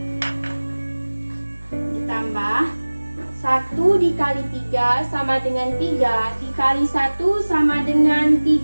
ditambah 1 dikali 3 sama dengan 3 dikali 1 sama dengan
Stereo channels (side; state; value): both; inverted; correlation -1.00